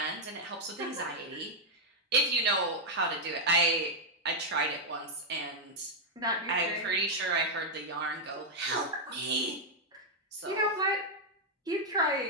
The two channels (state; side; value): normal; both; correlation -0.01